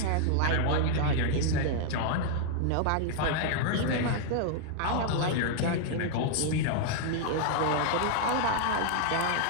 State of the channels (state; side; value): different; both; correlation 0.00